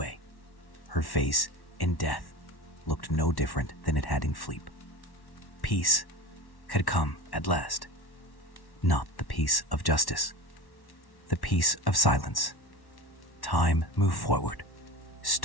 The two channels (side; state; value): right; late; 1.1 ms